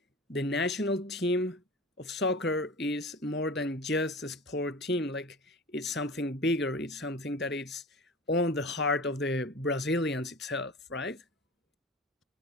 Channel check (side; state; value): both; normal; correlation 0.35